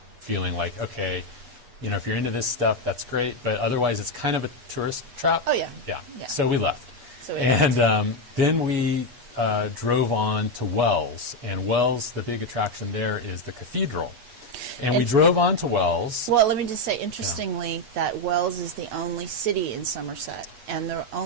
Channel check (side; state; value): left; late; 8.3 ms